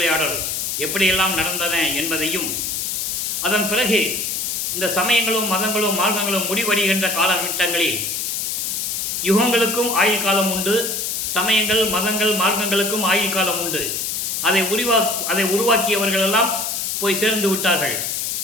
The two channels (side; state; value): left; noise; hiss, 1 dB below the sound